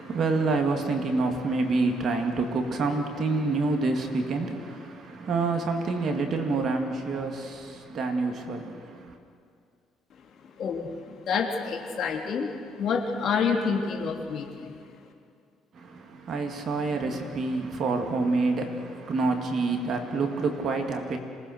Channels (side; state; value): both; normal; correlation 0.71